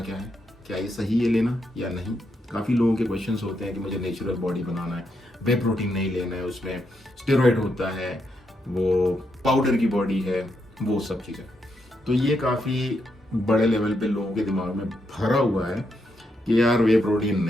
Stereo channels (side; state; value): both; normal; correlation 0.81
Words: है, क्या ये सही है लेना या नहीं। काफ़ी लोगों के क्वेश्चंस होते हैं कि मुझे नेचुरल बॉडी बनाना है, वे प्रोटीन नहीं लेना है, उसमें स्टेरॉइड होता है, वो पाउडर की बॉडी है, वो सब चीज़ें। तो ये काफ़ी बड़े लेवल पे लोगों के दिमाग में भरा हुआ है कि यार वे प्रोटीन